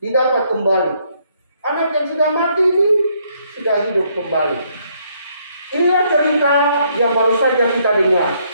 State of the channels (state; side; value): inverted; both; correlation -0.70